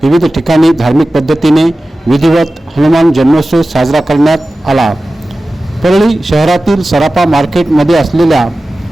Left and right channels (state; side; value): normal; both; correlation 0.95